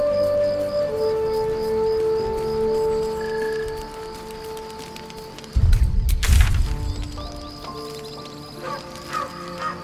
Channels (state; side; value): identical; both; correlation 1.00